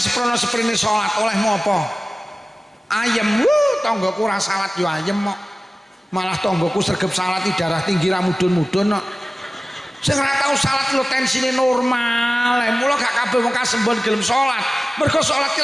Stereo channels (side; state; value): both; normal; correlation 0.97